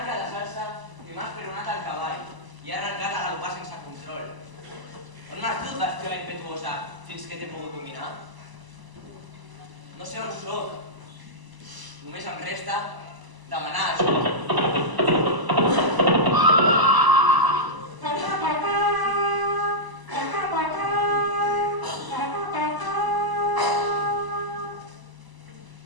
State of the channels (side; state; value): left; late; 1.0 ms